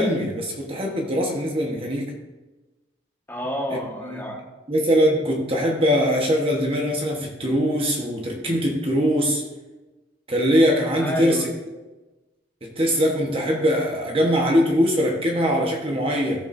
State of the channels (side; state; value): both; normal; correlation 0.63